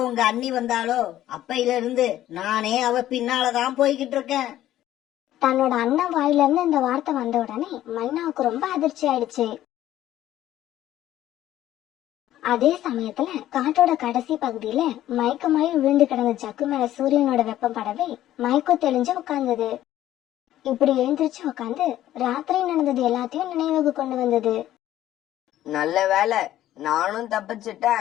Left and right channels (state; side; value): quieter; right; 13.2 dB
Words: உங்க அண்ணி வந்தாலோ அப்பையில இருந்து நானே அவ பின்னாலதான் போய்கிட்டு இருக்கேன். தன்னோட அண்ணன் வாயில இருந்து இந்த வார்த்தை வந்த உடனே மைனாவுக்கு ரொம்ப அதிர்ச்சி ஆயிடுச்சு. அதே சமயத்துல காட்டோட கடைசி பகுதியில மயக்கமாயி விழுந்து கிடந்த ஜக்கு மேல சூரியனோட வெப்பம் படவே மயக்கம் தெளிஞ்சு உட்கார்ந்தது. இப்படி எழுந்திருச்சு உட்காந்து ராத்திரி நடந்தது எல்லாத்தையும் நினைவுக்கு கொண்டு வந்தது. நல்ல வேலை, நானும்